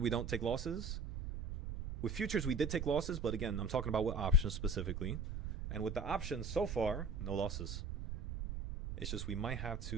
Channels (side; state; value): right; noise; rumble, 5 dB below the sound